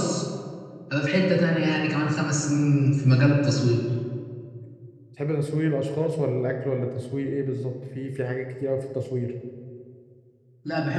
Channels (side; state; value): both; identical; correlation 1.00